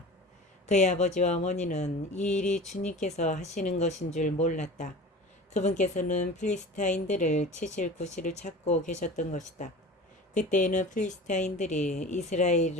그의 아버지와 어머니는 이 일이 주님께서 하시는 것인 줄 몰랐다. 그분께서는 필리스타인들을 치실 구실을 찾고 계셨던 것이다. 그때에는 필리스타인들이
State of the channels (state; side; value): normal; both; correlation 0.36